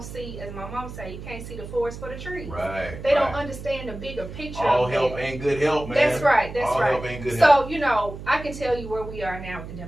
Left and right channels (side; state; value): right; noise; hum, 11 dB below the sound